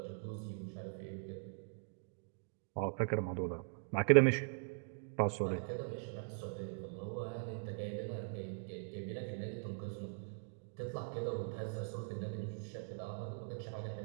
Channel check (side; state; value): left; silent; digital silence